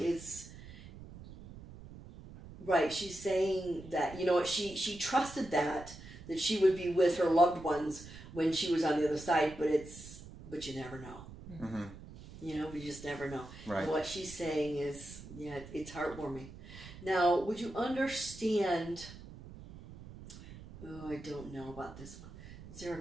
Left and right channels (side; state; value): right; noise; rumble, 15 dB below the sound